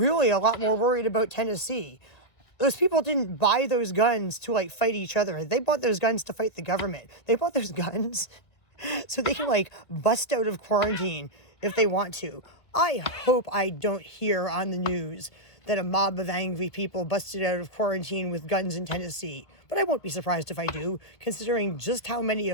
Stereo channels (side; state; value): right; late; 1.7 ms